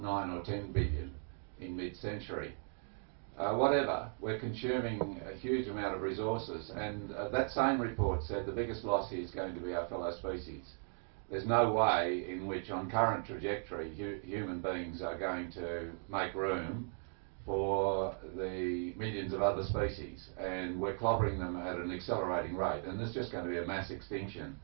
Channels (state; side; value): silent; left; 53 dB below the other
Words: 9 or 10 billion in mid-century. Whatever, we're consuming a huge amount of resources, and that same report said the biggest loss here is going to be our fellow species. There's no way in which, on current trajectory, human beings are going to make room for the millions of other species, and we're clobbering them at an accelerating rate, and there's just going to be a mass extinction